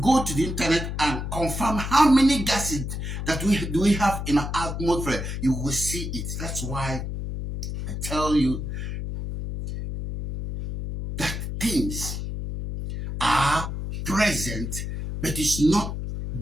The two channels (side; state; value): left; noise; hum, 5 dB below the sound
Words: to the internet and confirm how many gases that we have in our atmosphere, you will see it. That's why I tell you that things are present, but it's not